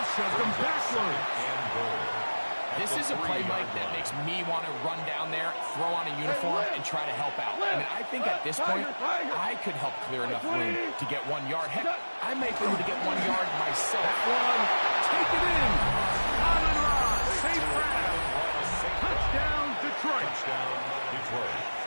shoved him backwards. This is a play, Mike, that makes me want to run down there, throw on a uniform, and try to help out. I mean, I think at this point, I could help clear enough room to get 1 yard. Heck, I may be able to get 1 yard myself. That one, take it in. Amon Ross, safe grab. Touchdown, Detroit.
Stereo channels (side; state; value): both; inverted; correlation -1.00